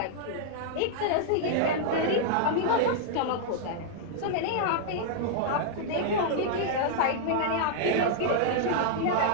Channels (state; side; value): different; both; correlation -0.01